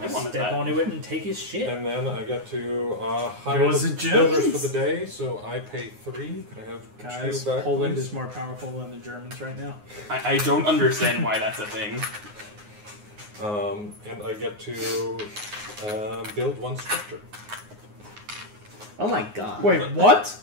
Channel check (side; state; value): left; late; 9.6 ms